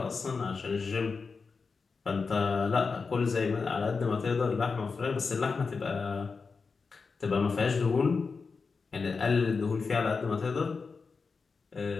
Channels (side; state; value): right; quieter; 4.8 dB